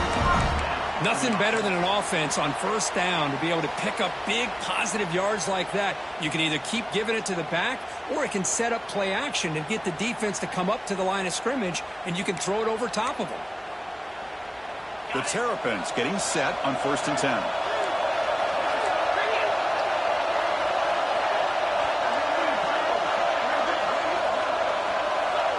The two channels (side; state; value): both; identical; correlation 1.00